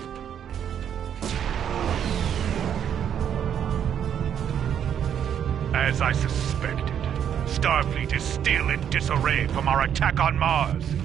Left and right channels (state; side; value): quieter; left; 9.1 dB